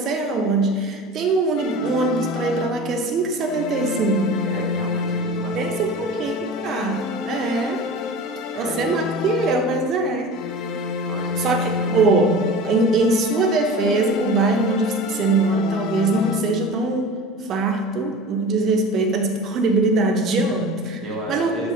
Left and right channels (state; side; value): normal; both; correlation 0.35